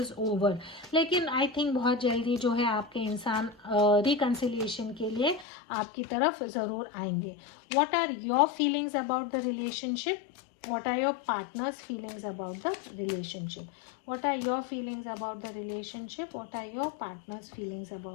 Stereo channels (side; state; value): right; drops out; at 5.5 s